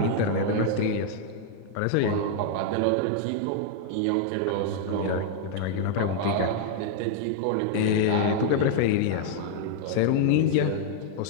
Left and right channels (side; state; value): both; different; correlation 0.00